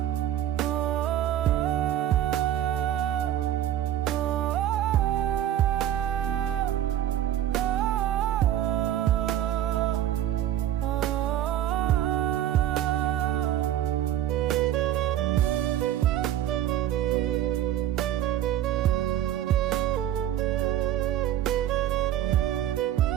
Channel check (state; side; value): quieter; left; 11.8 dB